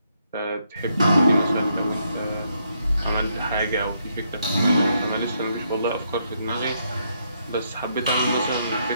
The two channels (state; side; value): inverted; both; correlation -0.76